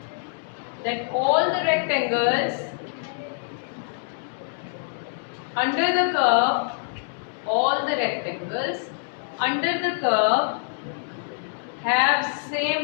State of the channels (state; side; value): silent; right; digital silence